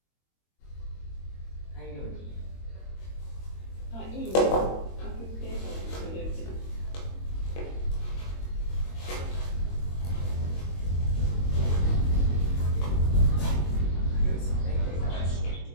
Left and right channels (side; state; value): right; late; 22 ms